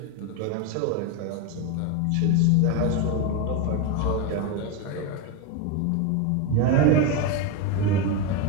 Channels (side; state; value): both; different; correlation 0.03